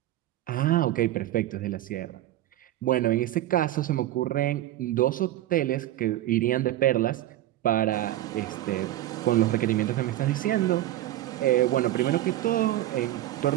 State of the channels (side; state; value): left; quieter; 14.3 dB